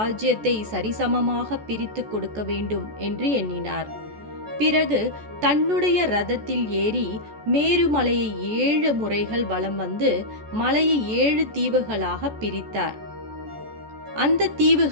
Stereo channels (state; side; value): late; left; 14 ms